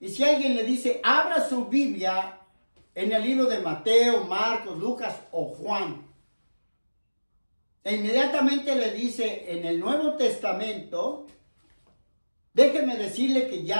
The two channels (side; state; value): both; inverted; correlation -1.00